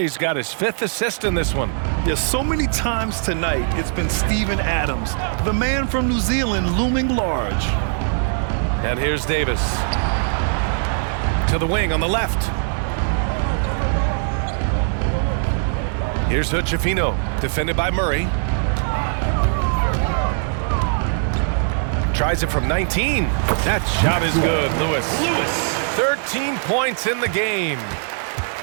got his 5th assist in this one. There's so many times tonight it's been Steven Adams, the man from New Zealand, looming large. And here's Davis. To the wing on the left. Here's Hood-Schifino, defended by Murray. Tries it from 19. That shot is good, Lewis. 13 points in the game.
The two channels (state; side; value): silent; left; digital silence